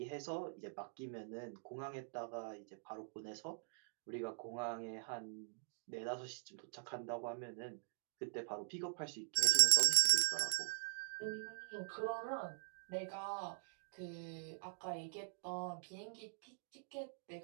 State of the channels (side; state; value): left; silent; digital silence